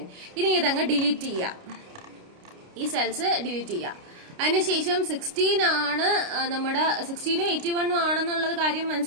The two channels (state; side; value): late; left; 29 ms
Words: ഇനി ഇതങ്ങ് ഡിലീറ്റ് ചെയ്യുക. ഈ സെൽസ് ഡിലീറ്റ് ചെയ്യുക. അതിനുശേഷം 16 ആണ് നമ്മുടെ 16 81 ആണെന്നുള്ളത് കാര്യം